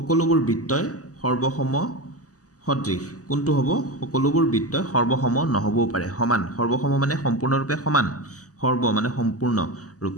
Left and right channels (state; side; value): late; right; 0.67 ms